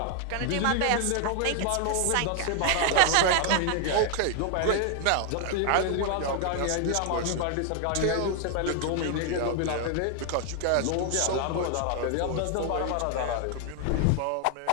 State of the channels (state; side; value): different; both; correlation 0.00